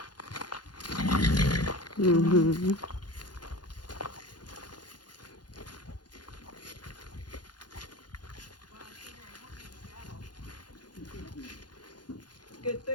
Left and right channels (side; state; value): right; late; 0.70 ms